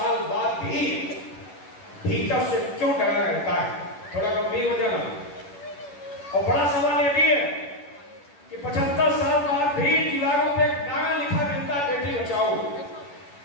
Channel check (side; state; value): right; late; 11 ms